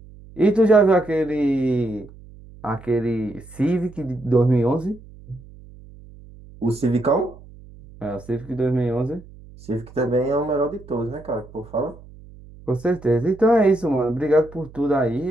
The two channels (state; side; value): noise; right; hum, 20 dB below the sound